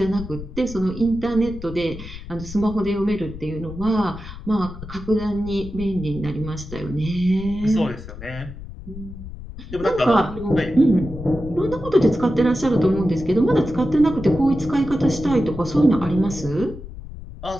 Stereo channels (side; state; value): left; noise; rumble, 12 dB below the sound